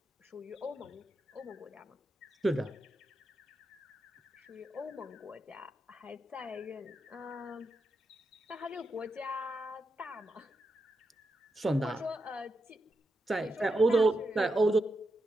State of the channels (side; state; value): both; normal; correlation 0.86